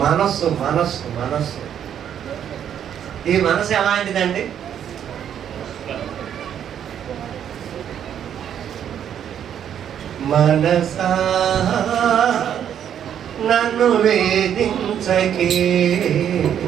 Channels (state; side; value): quieter; left; 9.3 dB